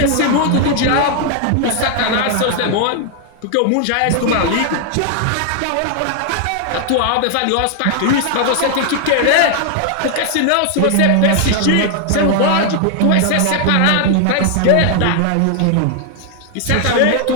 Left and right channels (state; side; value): different; both; correlation 0.00